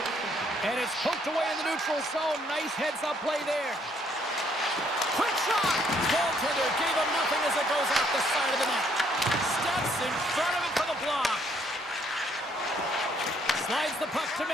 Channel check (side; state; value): both; normal; correlation 0.68